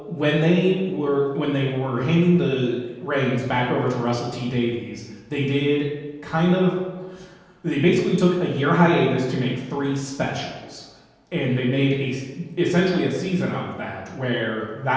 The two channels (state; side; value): identical; both; correlation 1.00